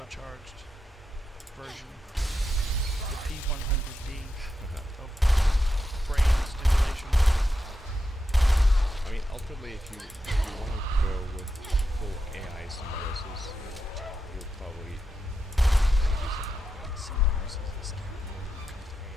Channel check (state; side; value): normal; both; correlation 0.87